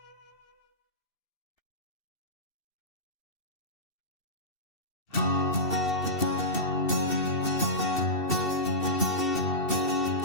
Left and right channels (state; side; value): late; right; 2.7 ms